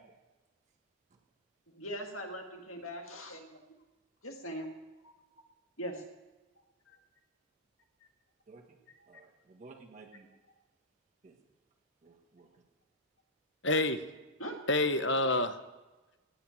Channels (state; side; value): normal; both; correlation -0.18